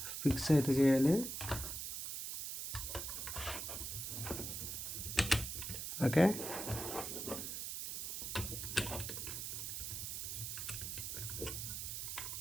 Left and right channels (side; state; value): right; noise; hiss, 4 dB below the sound